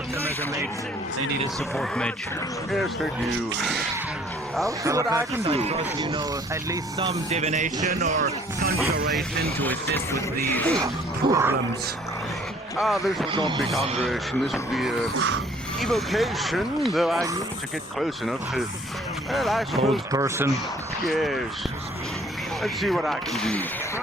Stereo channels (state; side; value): normal; both; correlation 0.58